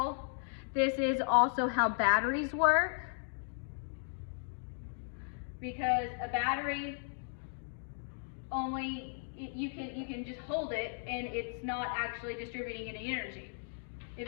this is also how batteries work. Because a battery only, you can just hold it and it's not actually distributing any energy.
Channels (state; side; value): silent; right; digital silence